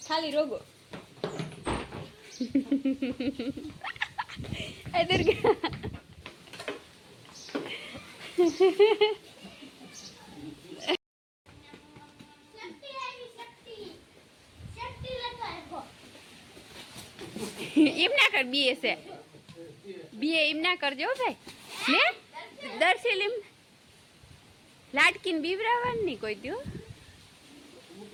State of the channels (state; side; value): identical; both; correlation 1.00